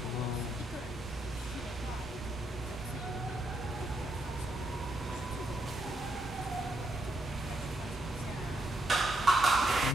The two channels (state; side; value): normal; both; correlation 0.79